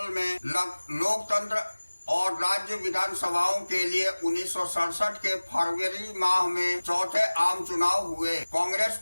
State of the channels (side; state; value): both; inverted; correlation -1.00